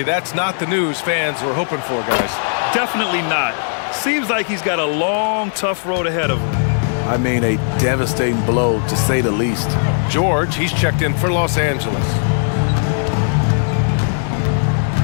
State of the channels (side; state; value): right; silent; digital silence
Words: that's not the news fans were hoping for, guys. Definitely not. Seems like he's got a long, tough road ahead of him. I mean, a devastating blow, to say the least. George, he's checked in for Los Angeles.